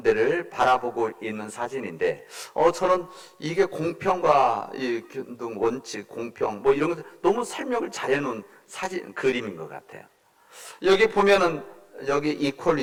데를 바라보고 있는 사진인데, 저는 이게 공평과 이 균등 원칙, 공평 뭐 이런 것 너무 설명을 잘해놓은 사진 그림인 것 같아요. 여기 보면은 여기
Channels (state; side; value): identical; both; correlation 1.00